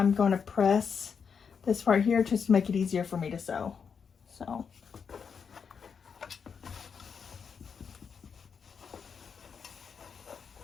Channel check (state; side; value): quieter; right; 6.4 dB